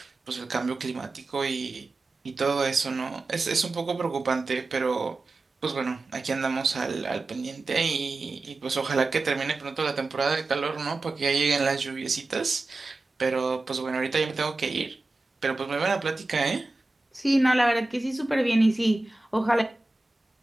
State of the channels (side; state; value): left; quieter; 3.2 dB